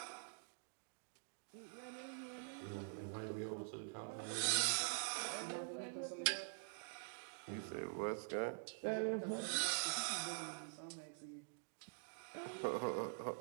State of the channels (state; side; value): silent; left; digital silence